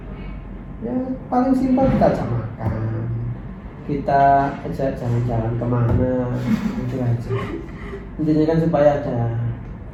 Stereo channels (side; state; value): both; identical; correlation 1.00